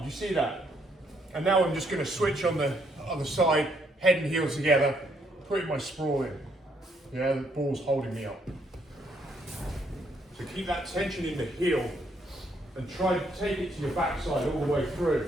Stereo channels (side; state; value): both; normal; correlation 0.71